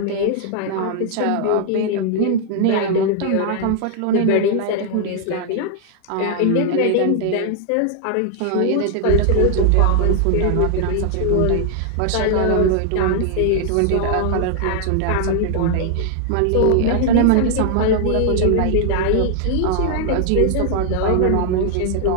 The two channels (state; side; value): different; both; correlation 0.00